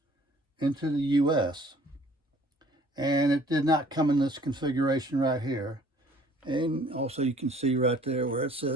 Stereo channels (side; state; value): both; normal; correlation 0.56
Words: into the U.S. And it did not come in this configuration right here. And also you can see right there where it